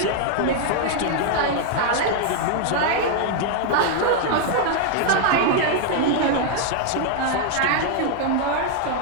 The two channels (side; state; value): both; different; correlation 0.00